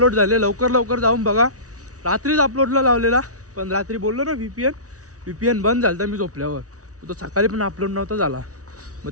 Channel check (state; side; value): late; left; 0.67 ms